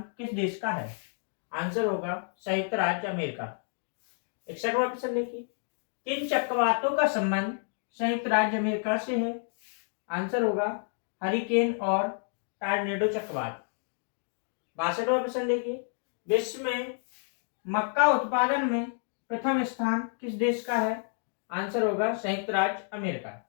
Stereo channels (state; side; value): silent; right; 58 dB below the other